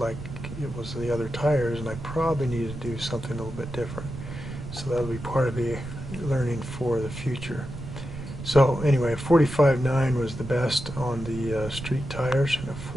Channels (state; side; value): noise; right; rumble, 10 dB below the sound